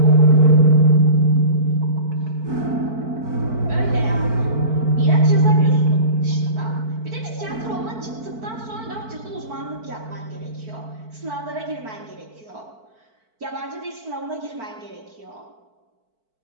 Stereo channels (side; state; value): left; late; 4.5 ms